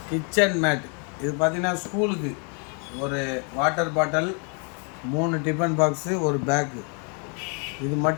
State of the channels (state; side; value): quieter; right; 38.4 dB